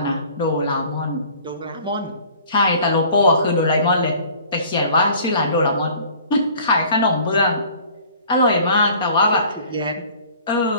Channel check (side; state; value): both; inverted; correlation -0.49